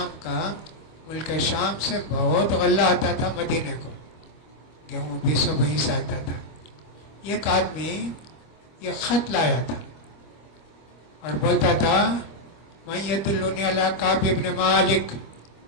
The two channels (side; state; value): right; late; 25 ms